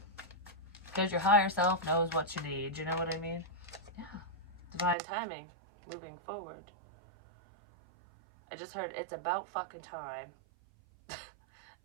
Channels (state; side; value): drops out; left; at 5.0 s